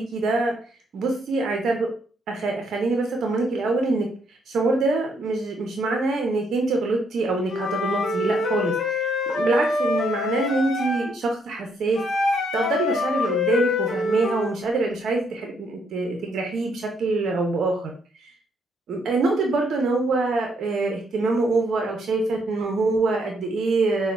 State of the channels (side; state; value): both; normal; correlation 0.72